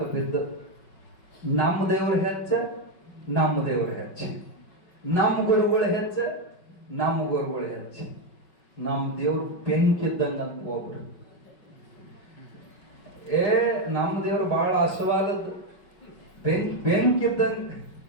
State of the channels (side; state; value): right; late; 5.4 ms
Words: ಬಿದ್ದು ನಮ್ಮ ದೇವ್ರ ಹೆಚ್ಚ, ನಮ್ಮ ದೇವ್ರ ಹೆಚ್ಚ, ನಮ್ಮ ಗುರುಗಳು ಹೆಚ್ಚ, ನಮ್ಮ ಗುರುಗಳು ಹೆಚ್ಚ. ನಮ್ಮ ದೇವ್ರ ಬೆಂಕಿದ್ದಂಗ ಅಂತ ಒಬ್ರು, ನಮ್ಮ ದೇವ್ರು ಬಹಳ ಹಸುವಾದದ್ದು, ಬೆಂಕಿದ್ದಂಗ.